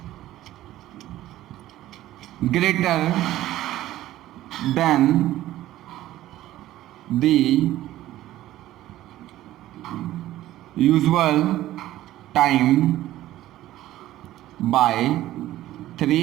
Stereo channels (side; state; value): left; quieter; 14.5 dB